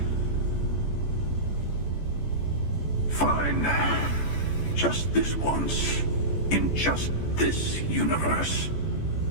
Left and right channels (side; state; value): right; late; 14 ms